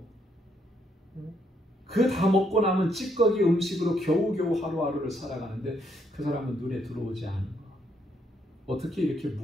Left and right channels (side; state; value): both; normal; correlation 0.73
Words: 그 다 먹고 남은 찌꺼기 음식으로 겨우겨우 하루하루를 살아가는데 그 사람은 눈에 들어오지 않은 거. 어떻게 이렇게